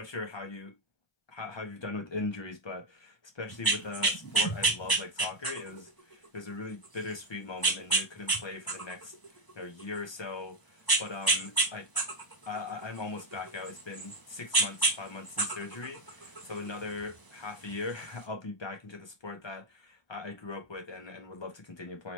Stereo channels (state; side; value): late; right; 1.0 ms